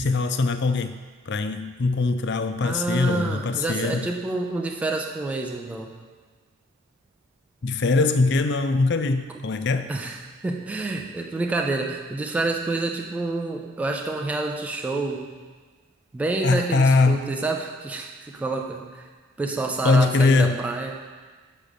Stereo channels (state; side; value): normal; both; correlation 0.67